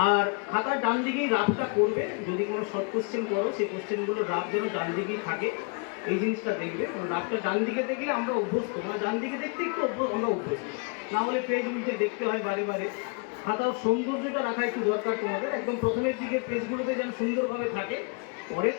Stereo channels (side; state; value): right; quieter; 35.5 dB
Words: আর খাতার ডান দিকেই রাফটা করবে। যদি কোনো শর্ট কোশ্চেন করো, সেই কোশ্চেনগুলো রাফ যেন ডান দিকেই থাকে, এই জিনিসটা দেখবে। কারণ রাফটা ডান দিকে দেখলে আমরা অভ্যস্ত, মানে ডান দিকে দেখতে একটু আমরা অভ্যস্ত, না হলে পেজ উল্টে দেখতে হয় বারে বারে। খাতার সৌন্দর্যটা রাখা একটু দরকার তোমাদের। একদম প্রথমের দিকে পেজগুলোতে যেন সুন্দরভাবে থাকে, পরে